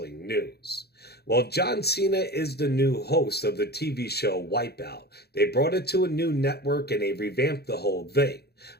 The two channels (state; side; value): late; right; 0.47 ms